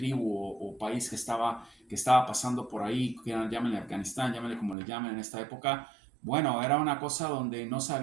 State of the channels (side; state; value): left; drops out; at 4.8 s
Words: o país que estaba pasando por ahí, llámenle Afganistán, llámenle como le llamen en esta época. Bueno, era una cosa donde no